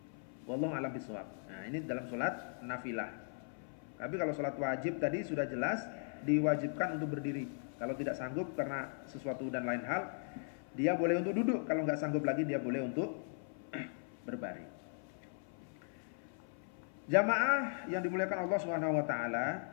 Wallahu alam bisawab. Nah, ini dalam sholat nafilah. Tapi kalau sholat wajib tadi sudah jelas diwajibkan untuk berdiri. Kalau tidak sanggup karena sesuatu dan lain hal, dia boleh untuk duduk. Kalau nggak sanggup lagi, dia boleh untuk berbaring. Jamaah yang dimuliakan Allah Subhanahu wa taala,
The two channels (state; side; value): silent; right; 52 dB below the other